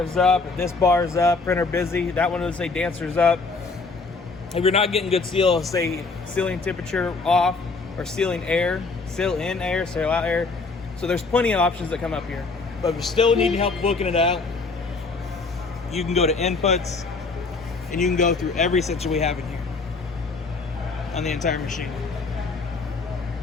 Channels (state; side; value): quieter; right; 4.0 dB